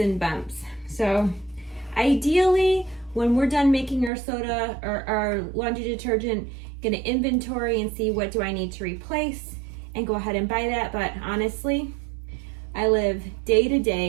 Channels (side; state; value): left; drops out; at 4.1 s